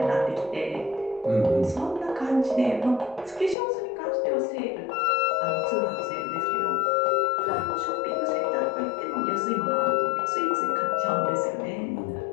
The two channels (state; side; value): drops out; right; at 3.6 s